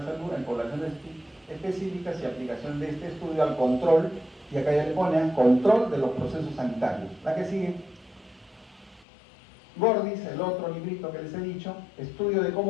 salud en poblaciones específicas y aplicación de este estudio al control, y acá ya le ponen control de los procesos sanitarios. La que sigue. Gordis, el otro librito que les he dicho, estudio de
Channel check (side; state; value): right; drops out; at 9.1 s